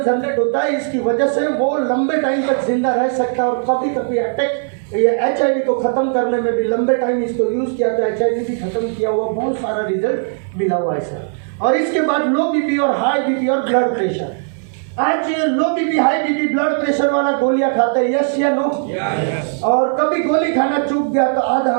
जनरेट होता है, इसकी वजह से वो लंबे टाइम तक जिंदा रह सकता है। और कभी कभी अटैक, ये HIV को खत्म करने में भी लंबे टाइम इसको यूज किया तो HIV भी खत्म किया हुआ बहुत सारा रिजल्ट मिला हुआ है सर। और इसके बाद लो बीपी और हाई बीपी और ब्लड प्रेशर। आज लो BP high BP blood pressure वाला गोलियां खाते हैं, यस या नो? और कभी गोली खाना चूक गया तो आधा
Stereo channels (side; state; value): left; silent; digital silence